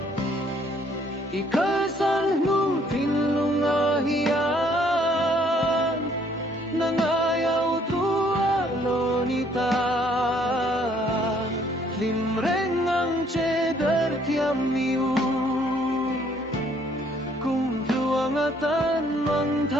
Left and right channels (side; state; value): both; normal; correlation 0.64